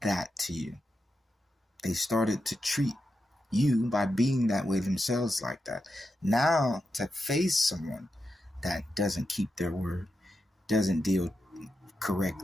that to you. They started to treat you by being that way themselves like that. Now to face someone that doesn't keep their word, doesn't deal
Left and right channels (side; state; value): both; normal; correlation 0.87